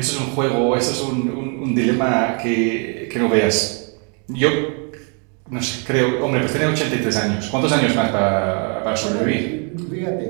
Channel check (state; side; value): quieter; left; 38.6 dB